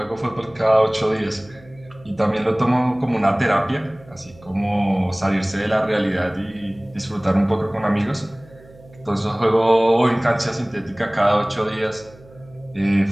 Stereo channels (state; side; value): noise; right; hum, 24 dB below the sound